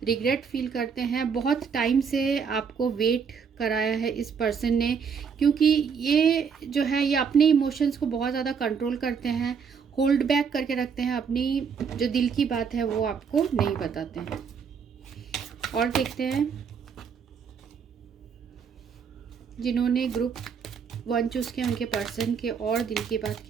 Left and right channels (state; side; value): quieter; left; 6.4 dB